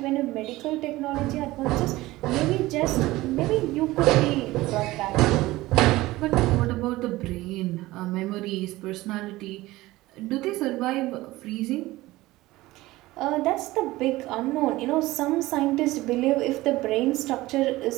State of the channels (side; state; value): left; quieter; 18.4 dB